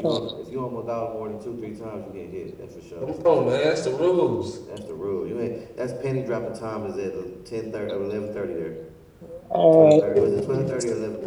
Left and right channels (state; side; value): identical; both; correlation 1.00